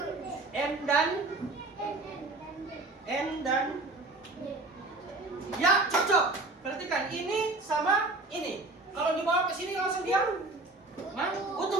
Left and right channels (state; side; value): quieter; left; 3.1 dB